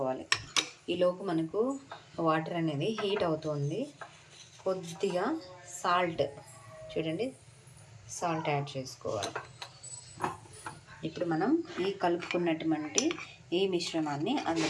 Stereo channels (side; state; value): both; identical; correlation 1.00